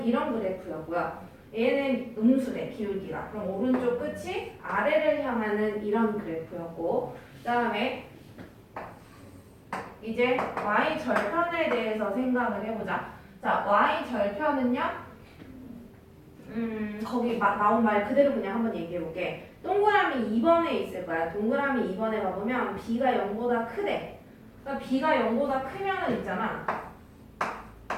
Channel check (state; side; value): identical; both; correlation 1.00